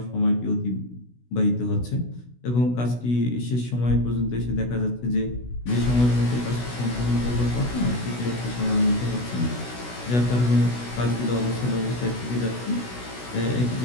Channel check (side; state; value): right; late; 16 ms